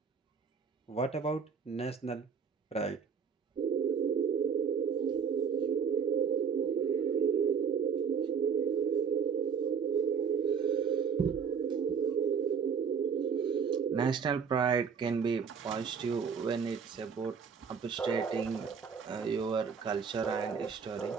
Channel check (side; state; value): left; quieter; 6.5 dB